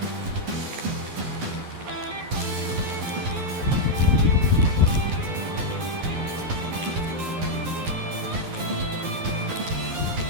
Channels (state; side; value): late; left; 11 ms